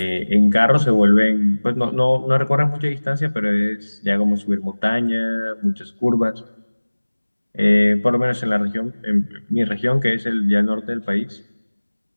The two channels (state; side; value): inverted; both; correlation -1.00